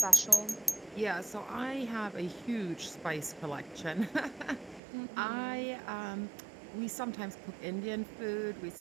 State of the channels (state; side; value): drops out; left; at 4.8 s